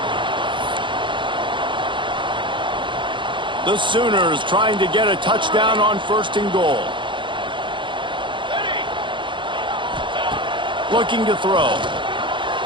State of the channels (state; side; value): late; left; 0.23 ms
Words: The Sooners trying to get a touchdown on 1st and goal. Looking to throw.